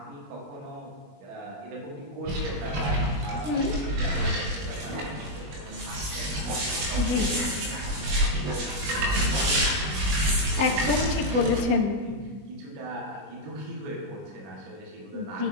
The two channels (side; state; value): left; late; 21 ms